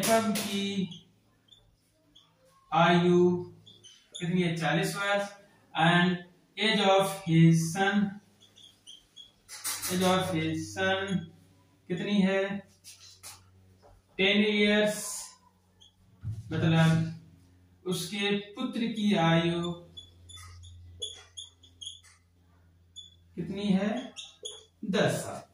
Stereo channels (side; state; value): both; identical; correlation 1.00